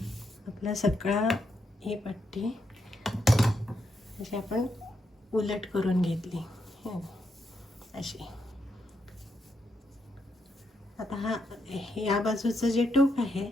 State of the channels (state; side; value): normal; both; correlation 0.80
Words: आपला सगळा ही पट्टी अशी आपण उलट करून घेतली अशी. आता या बाजूचं जे टोक आहे